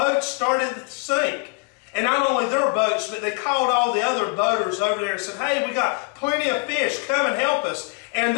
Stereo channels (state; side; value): quieter; right; 30.9 dB